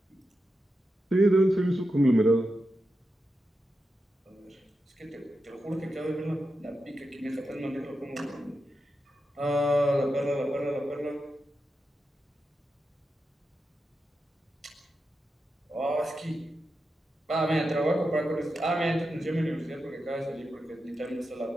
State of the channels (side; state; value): both; normal; correlation 0.89